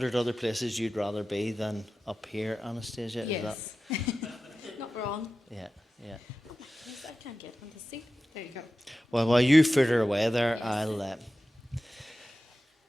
other places you'd rather be than up here, Anastasia. Yes. Not wrong. Yeah. Yes, I can't get on the seat. There you go. Well, while you fritter away there, Yes.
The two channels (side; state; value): both; normal; correlation 0.94